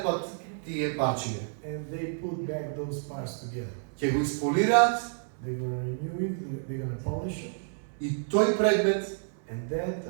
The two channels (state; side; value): silent; left; 58 dB below the other